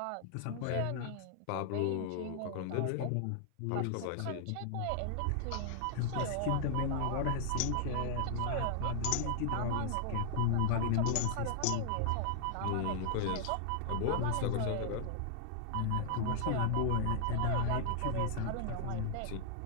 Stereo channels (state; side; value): different; both; correlation 0.00